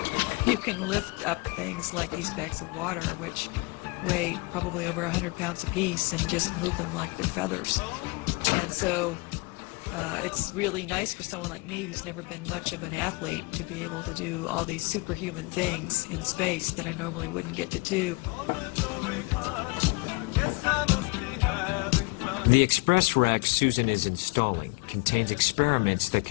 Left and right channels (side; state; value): right; quieter; 26.4 dB